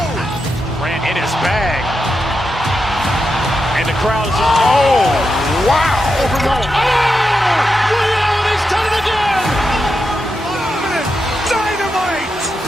Grant in his bag. And the crowd is, oh, wow. Ray Allen has done it again. Dynamite.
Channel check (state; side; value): normal; both; correlation 0.87